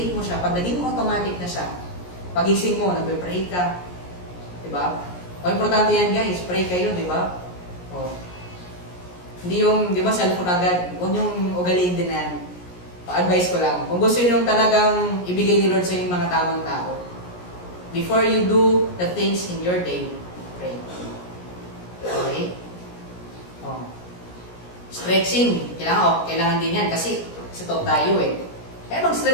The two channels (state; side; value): late; right; 17 ms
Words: mo siya, pag naging automatic na siya, pagising mo, nagbe-pray ka, di ba? O, importante yan, guys. Pray kayo, di ba? O. Hindi yung, di ba, cellphone agad. Huwag yung ugaliin din na yan. Pa-advise ko lang. Kung gusto nyo talagang ibigay ni Lord sa inyong mga tamang tao, before you do the things in your day, pray. Okay? Oh. Stretching. Kailangan din yan kasi top tayo eh. Kaya